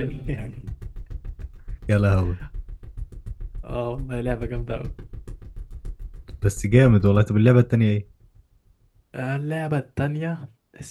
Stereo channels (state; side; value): identical; both; correlation 1.00